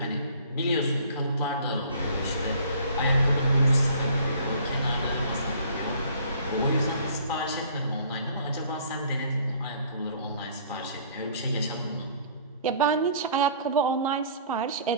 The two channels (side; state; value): both; inverted; correlation -0.53